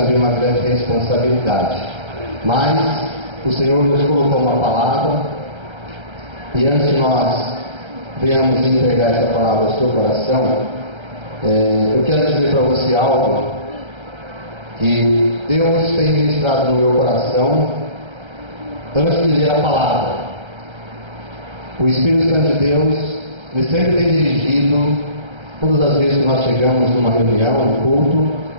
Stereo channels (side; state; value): left; late; 1.3 ms